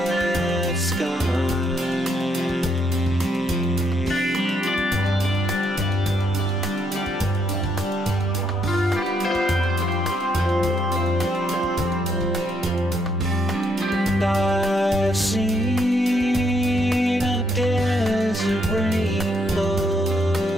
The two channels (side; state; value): both; normal; correlation 0.74